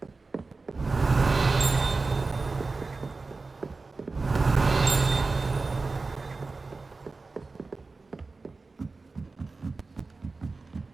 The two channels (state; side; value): quieter; left; 3.8 dB